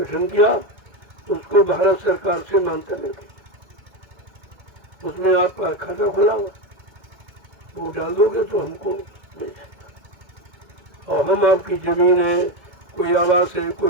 किया, उसको भारत सरकार से मान्यता मिल गई। उसमें आपका खाता खुला हुआ, वो डाल दोगे तो हमको मिल जाएगा। और हम आपकी जमीन है, कोई आवास है,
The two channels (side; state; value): left; late; 1.7 ms